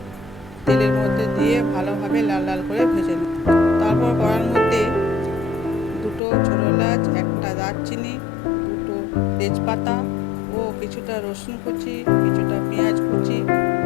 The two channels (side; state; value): right; drops out; at 6.2 s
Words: তেলের মধ্যে দিয়ে ভালোভাবে লাল লাল করে ভেজে নেব। তারপর কড়ার মধ্যে দুটো ছোটো এলাচ, একটা দারচিনি, দুটো তেজপাতা ও কিছুটা রসুন কুচি, কিছুটা পেঁয়াজ কুচি